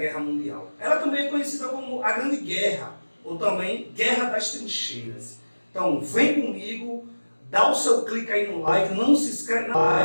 Mundial. Ela também é conhecida como a Grande Guerra, ou também Guerra das Trincheiras. Então, vem comigo, dá o seu clique aí no like, não se inscreve,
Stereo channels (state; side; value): inverted; both; correlation -1.00